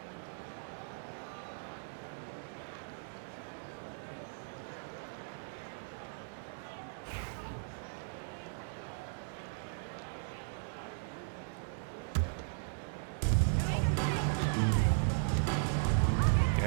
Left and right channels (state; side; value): silent; left; digital silence